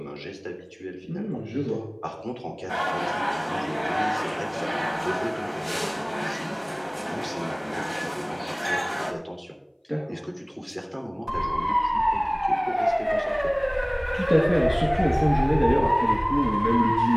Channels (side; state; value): both; identical; correlation 1.00